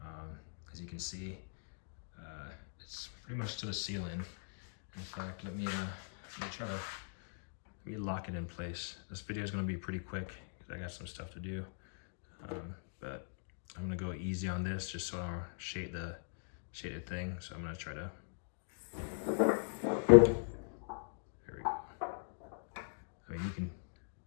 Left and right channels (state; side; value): silent; right; digital silence